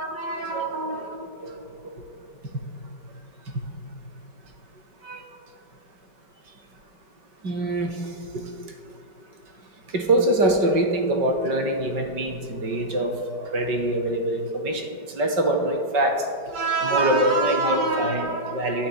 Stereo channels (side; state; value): left; late; 5.2 ms